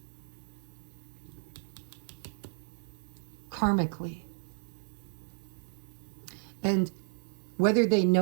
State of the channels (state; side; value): silent; left; digital silence